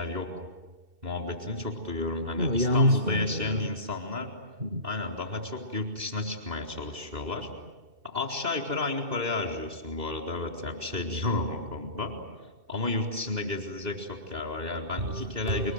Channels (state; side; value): late; left; 2.7 ms